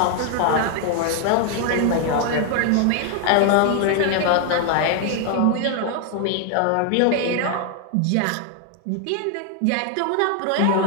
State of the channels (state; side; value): different; both; correlation 0.00